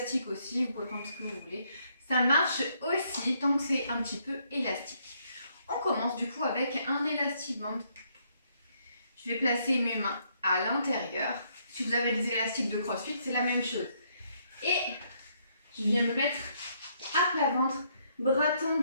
aussi, vous pouvez prendre ce que vous voulez. Ça marche aussi tant que c'est un petit peu élastique. On commence du coup avec un élastique band. Je vais placer mes mains à l'intérieur. Si vous avez des élastiques de CrossFit, c'est la même chose. Et je viens me mettre à plat ventre, bras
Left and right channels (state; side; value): inverted; both; correlation -0.71